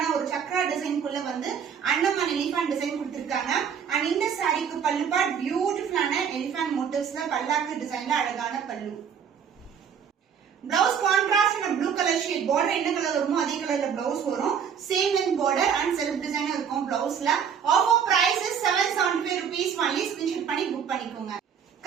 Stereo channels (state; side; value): quieter; left; 7.5 dB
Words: ஒரு சக்ரா டிசைன் குள்ள வந்து அண்ணமான் எலிஃபண்ட் டிசைன் கொடுத்திருக்காங்க. and இந்த சாரிக்கு பல்லு பார்ட் பியூட்டிஃபுல்லான எலிஃபண்ட் மோட்டிவ்ஸ்ல பல்லாக்கு டிசைன்ல அழகான பல்லு. Blouse contrast in a blue color shade, border என்ன கலர் வருமோ அதே கலர்ல blouse வரும். same in border and self design இருக்கும் blouseல. offer price is 775 rupees only. screenshot பண்ணி book பண்ணிக்கோங்க.